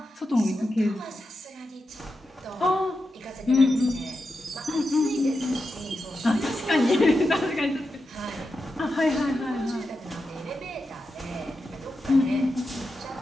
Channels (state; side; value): normal; both; correlation 0.89